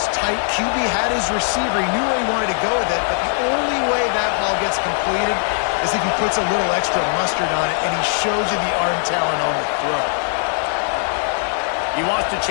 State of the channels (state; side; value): silent; right; digital silence